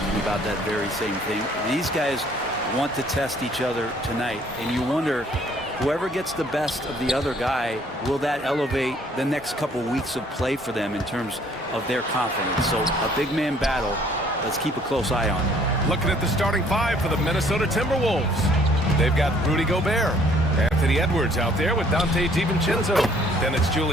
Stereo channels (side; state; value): both; normal; correlation 0.60